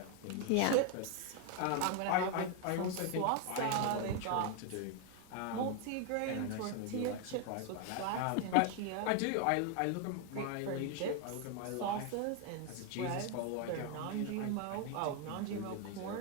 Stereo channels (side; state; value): both; different; correlation 0.01